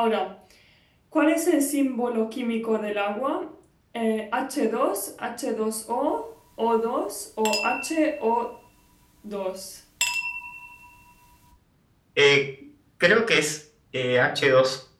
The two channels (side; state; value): both; identical; correlation 1.00